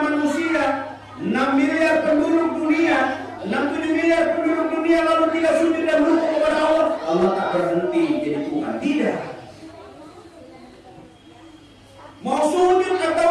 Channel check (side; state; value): both; identical; correlation 1.00